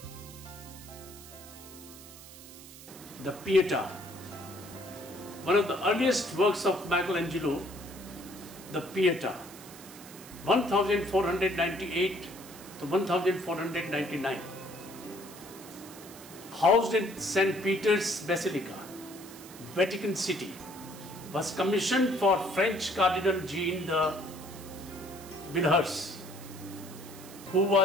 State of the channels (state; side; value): noise; right; hiss, 17 dB below the sound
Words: The Pietà, one of the earliest works of Michelangelo, the Pietà, 1498 to 1499. housed in St. Peter's Basilica, Vatican City, was commissioned for French Cardinal Jean de Villers, who